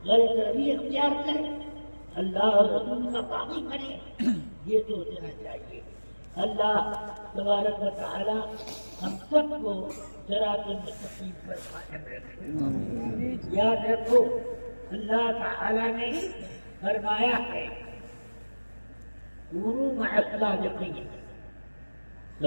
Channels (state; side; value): inverted; both; correlation -1.00